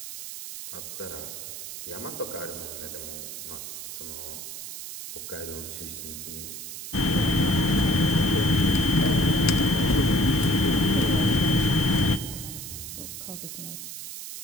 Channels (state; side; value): noise; right; hiss, 9 dB below the sound